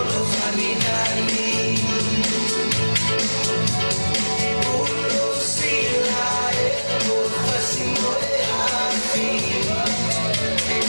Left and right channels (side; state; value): both; inverted; correlation -1.00